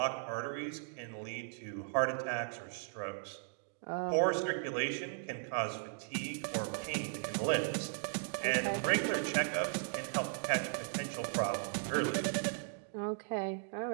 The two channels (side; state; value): left; silent; digital silence